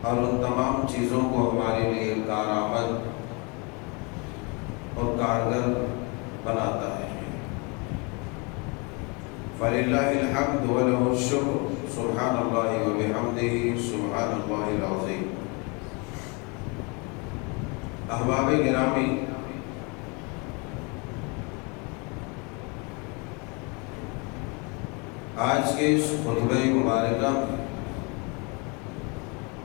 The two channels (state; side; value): quieter; right; 31.0 dB